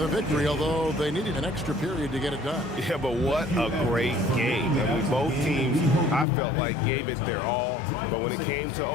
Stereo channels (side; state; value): right; drops out; at 6.2 s